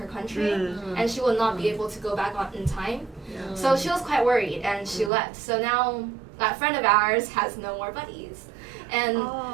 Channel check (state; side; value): drops out; left; at 5.1 s